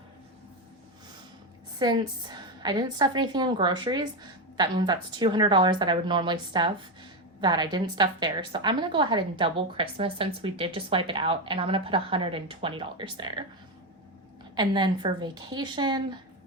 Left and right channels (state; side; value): normal; both; correlation 0.11